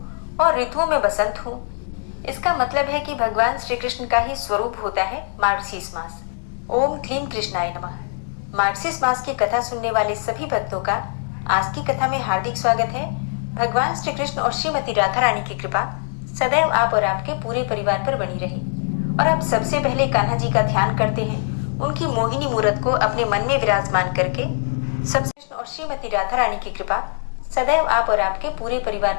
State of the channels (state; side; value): silent; right; 64 dB below the other